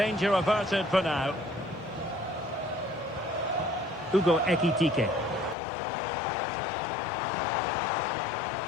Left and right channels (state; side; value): drops out; right; at 5.6 s